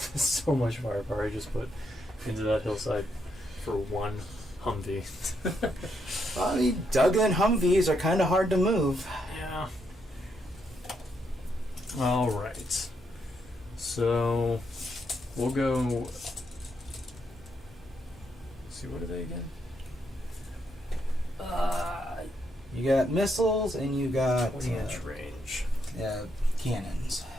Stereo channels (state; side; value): normal; both; correlation 0.78